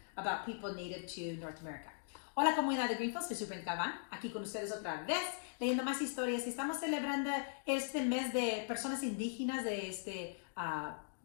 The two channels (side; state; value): right; silent; digital silence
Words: about people native to North America. Hola comunidad de Greenfield, soy Superintendent Galvan, aquí con ustedes otra vez, leyendo más historias. Estamos celebrando este mes de personas indígenas de este